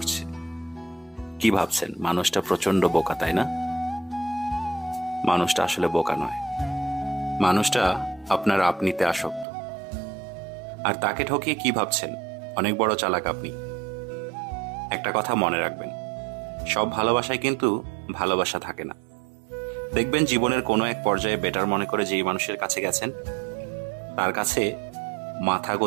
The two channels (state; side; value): drops out; left; at 9.5 s